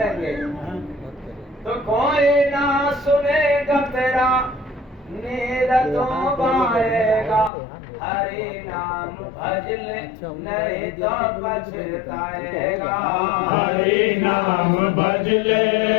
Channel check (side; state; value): right; drops out; at 7.5 s